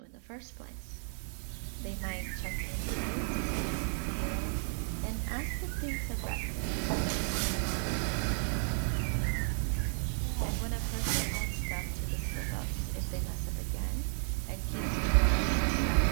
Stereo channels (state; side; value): silent; left; 56 dB below the other